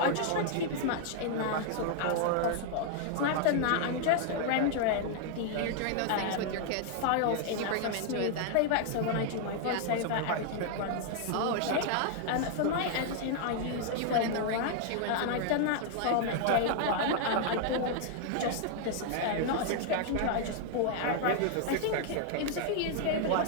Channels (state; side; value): different; both; correlation 0.00